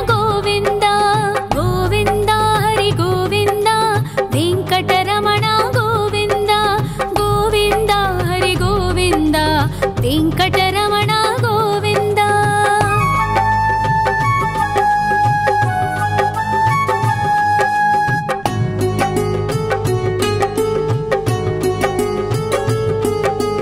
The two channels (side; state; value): right; noise; rumble, 24 dB below the sound